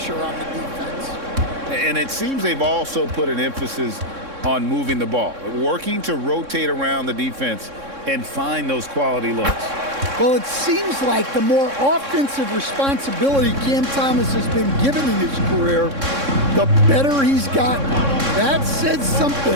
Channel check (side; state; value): left; late; 3.6 ms